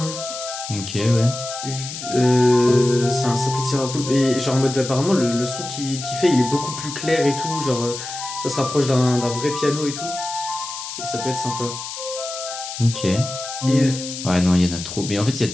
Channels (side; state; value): left; noise; hiss, 8 dB below the sound